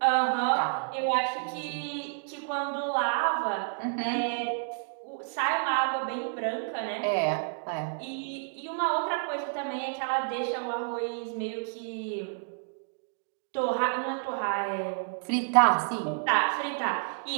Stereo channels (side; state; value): left; silent; digital silence